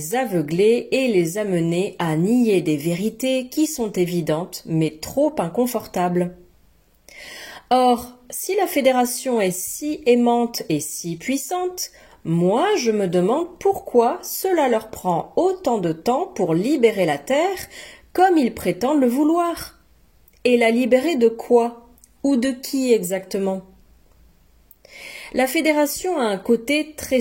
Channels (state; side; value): identical; both; correlation 1.00